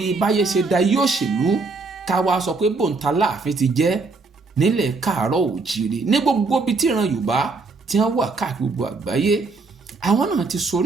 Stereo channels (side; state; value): left; quieter; 3.9 dB